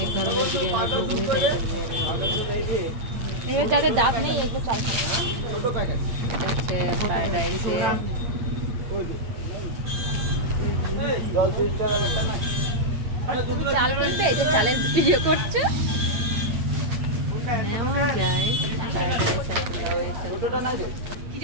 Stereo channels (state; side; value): late; left; 8.8 ms